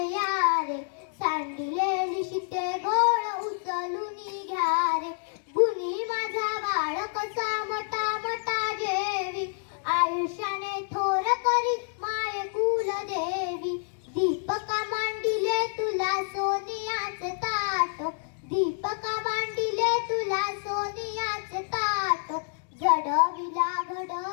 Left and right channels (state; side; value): silent; right; digital silence